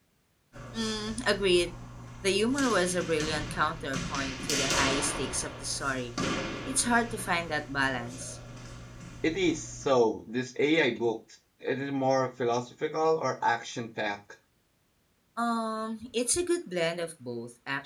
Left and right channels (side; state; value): both; identical; correlation 1.00